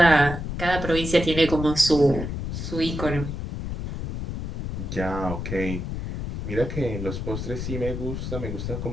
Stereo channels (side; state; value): left; noise; rumble, 5 dB below the sound